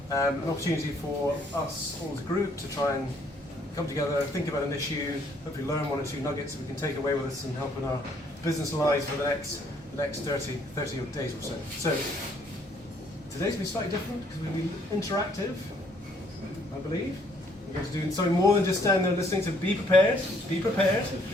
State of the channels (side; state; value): both; normal; correlation 0.65